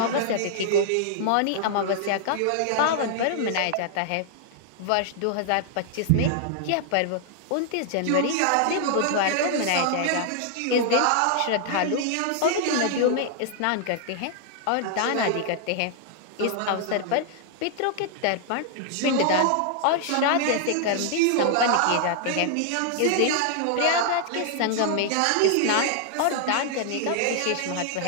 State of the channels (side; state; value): both; different; correlation 0.00